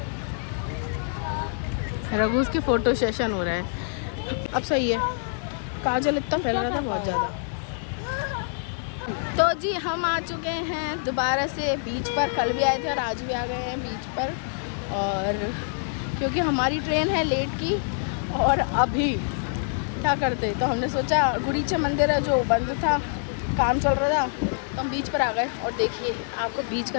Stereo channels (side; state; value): right; silent; 61 dB below the other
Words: रघु उसके फोटो सेशन हो रहा है। अब सही है, काजल इतना फैल रहा था बहुत ज़्यादा। तो जी हम आ चुके हैं दोबारा से बीच पर, कल भी आए थे और आज भी आ गए हैं बीच पर। और क्योंकि हमारी ट्रेन है लेट की और अभी क्या करते, तो हमने सोचा गुड़ीचा मंदिर है जो बंद था, काम चल रहा था, तो हम बीच पर आ गए। और देखिए आपको बीच का